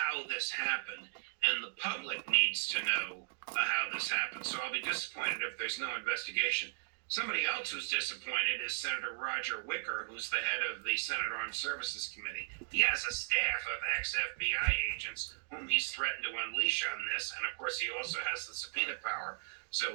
this happened, and the public needs to know how this happened. So I'll be disappointed if there's no investigation. Somebody else who's disappointed is Senator Roger Wicker, who's the head of the Senate Armed Services Committee. He has a staff of ex-FBI agents whom he's threatened to unleash on this, and of course he also has the subpoena power.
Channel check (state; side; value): silent; left; digital silence